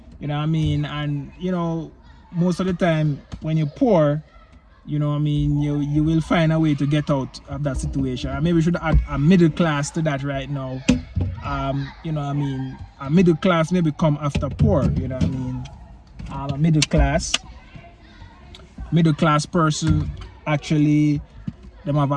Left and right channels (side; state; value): both; identical; correlation 1.00